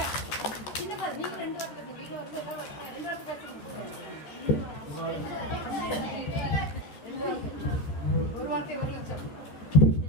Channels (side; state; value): right; late; 14 ms